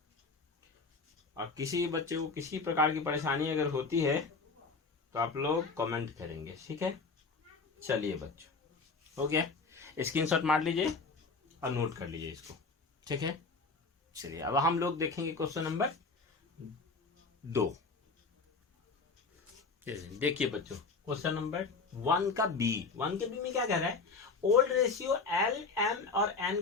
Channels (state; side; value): quieter; right; 4.3 dB